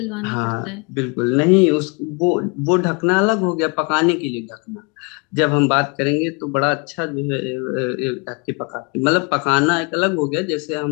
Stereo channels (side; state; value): right; quieter; 32.1 dB